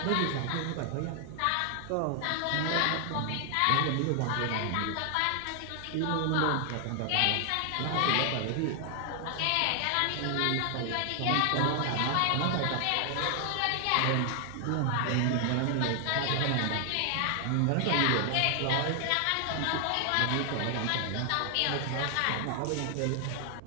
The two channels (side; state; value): both; different; correlation 0.00